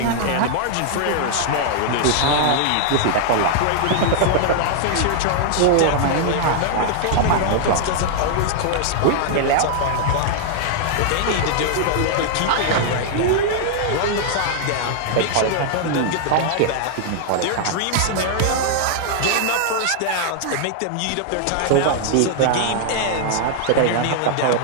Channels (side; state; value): both; different; correlation -0.01